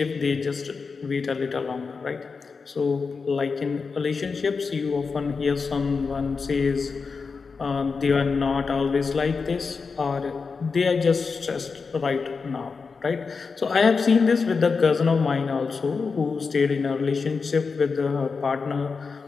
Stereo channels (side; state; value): right; quieter; 4.9 dB